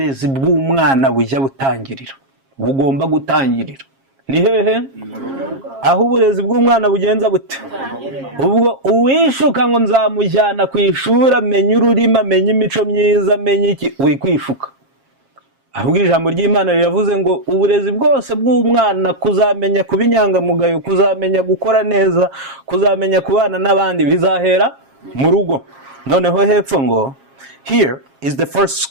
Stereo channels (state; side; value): late; left; 7.4 ms